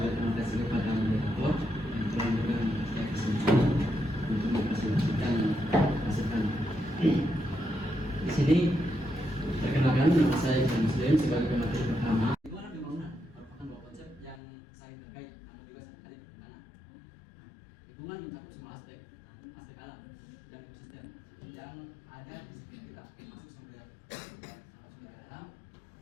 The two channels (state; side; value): drops out; right; at 14.4 s